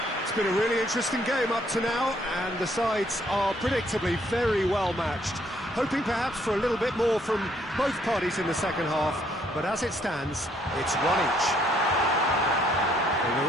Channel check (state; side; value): normal; both; correlation 0.67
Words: It's been a really interesting game up to now, and the sides are predictably very well matched. Hoping perhaps for a little bit more from both parties in the second half, but as it stands, it's one each. And